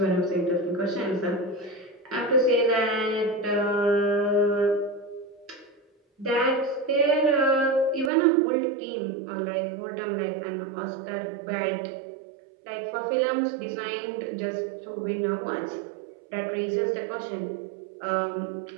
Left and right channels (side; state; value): left; drops out; at 8.1 s